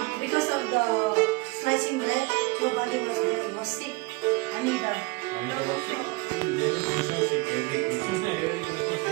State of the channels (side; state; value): left; quieter; 24.3 dB